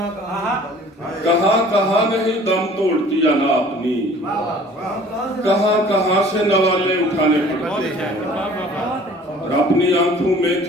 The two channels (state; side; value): normal; both; correlation 0.50